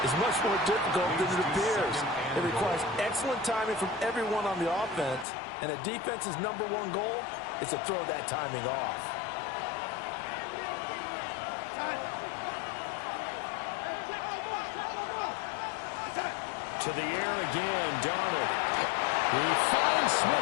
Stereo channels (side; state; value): right; drops out; at 5.2 s